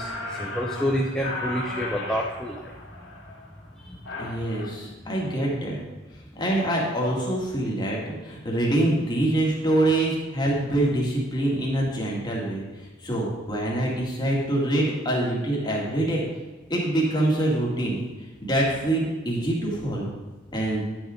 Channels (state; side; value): normal; both; correlation 0.65